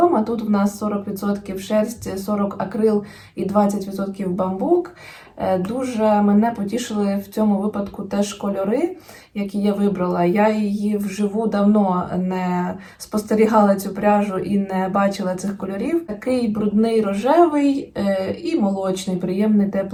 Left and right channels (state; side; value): identical; both; correlation 1.00